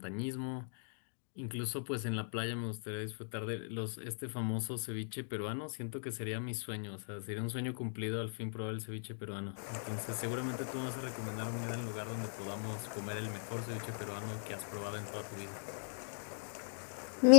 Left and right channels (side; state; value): right; silent; digital silence